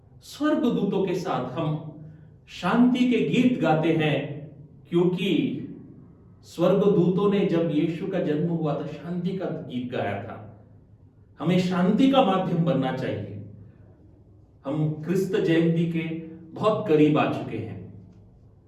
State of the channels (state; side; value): identical; both; correlation 1.00